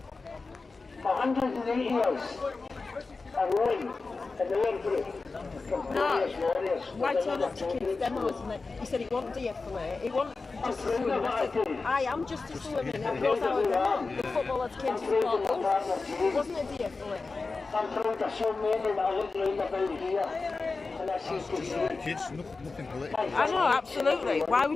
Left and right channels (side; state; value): right; quieter; 4.0 dB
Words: For 180 years, a rowing in the World Group. No, why turn up to kids' demos? And he said he won't de-escalate, he won't just assume. I said, I am just assuming that goes our demo. The footballers came to support us. It wasn't a de-escalate. I'm trying to show men that I look round about here. And I see Kids, nothing political. I know, absolutely. Why